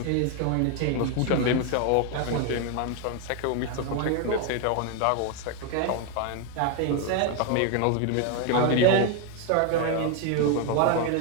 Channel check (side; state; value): both; different; correlation 0.01